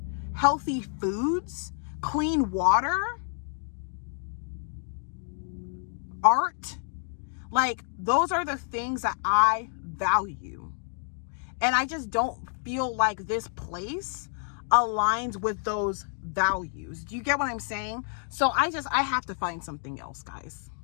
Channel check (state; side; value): silent; right; 59 dB below the other